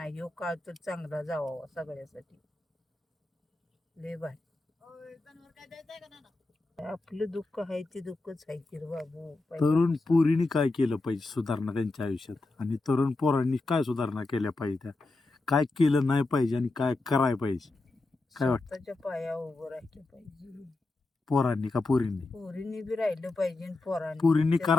ह्यो काळ तर चांगला जावा सगळ्यासाठी, लय भारी. आपलं दुःख आहे ते दुःखच आहे की रे बाबू. तरुण पोरीने काय केलं पाहिजे सुधारणा त्यांच्या आयुष्यात, आणि तरुण पोरांनी काय सुधारणा केल्या पाहिजे, त्या काय केलं नाही पाहिजे आणि काय करायला पाहिजे? काय वाटतं? स्वतःच्या पायावर उभं राहिलं पाहिजे. पोरांनी का पोरींनी? पोरींनी बी राहिलं पाहिजे आणि पोरांनी पोरींनी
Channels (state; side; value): quieter; right; 3.2 dB